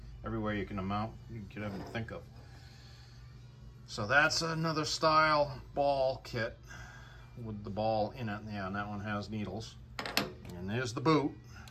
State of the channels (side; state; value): both; identical; correlation 1.00